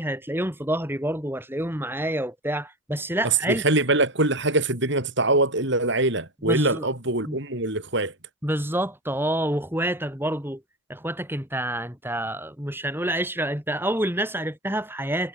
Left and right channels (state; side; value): normal; both; correlation 0.24